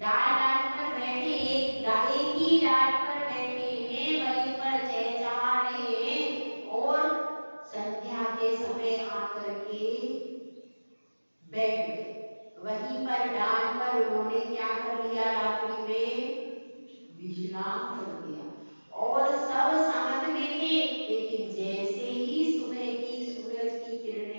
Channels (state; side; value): inverted; both; correlation -1.00